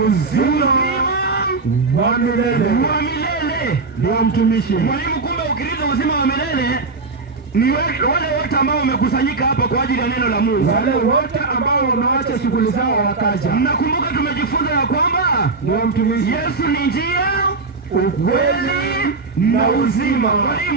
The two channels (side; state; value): left; quieter; 4.0 dB